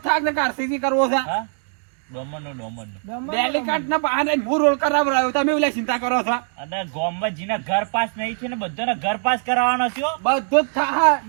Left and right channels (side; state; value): left; silent; 56 dB below the other